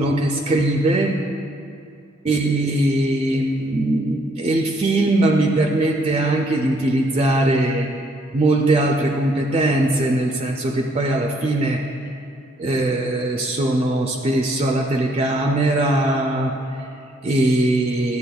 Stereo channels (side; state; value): both; normal; correlation 0.68